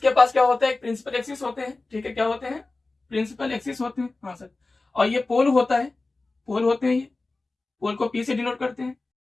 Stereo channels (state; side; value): quieter; right; 3.4 dB